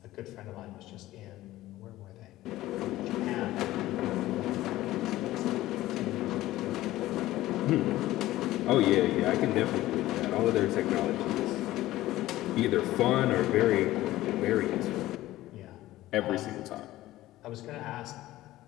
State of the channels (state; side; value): quieter; right; 16.0 dB